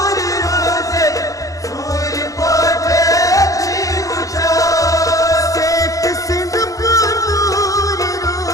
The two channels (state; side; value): late; right; 0.16 ms